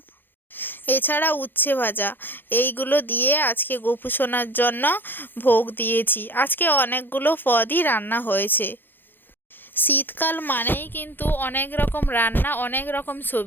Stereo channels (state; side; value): late; right; 0.095 ms